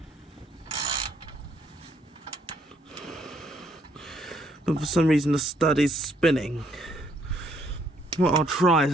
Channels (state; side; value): normal; both; correlation 0.69